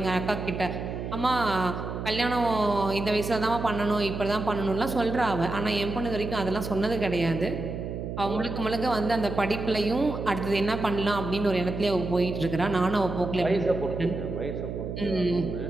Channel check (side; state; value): right; noise; hum, 6 dB below the sound